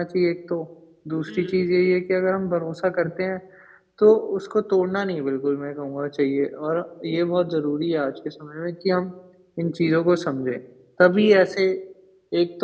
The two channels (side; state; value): both; identical; correlation 1.00